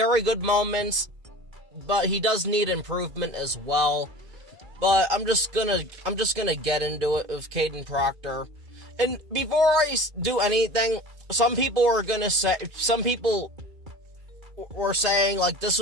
good moments, but he does need improvement as well. But I'm just gonna get into it with Kadyn Proctor. And before I do anything, some people were saying like this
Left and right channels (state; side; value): late; left; 2.5 ms